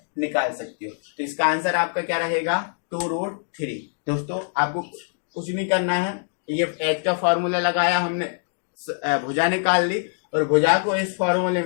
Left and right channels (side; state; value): right; silent; digital silence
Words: निकाल सकते हो। तो इसका आंसर आपका क्या रहेगा, 2√3। दोस्तों आपको कुछ नहीं करना है, ये एच का फॉर्मूला लगाया हमने, भुजा निकाल ली, और भुजा को इस फॉर्मूले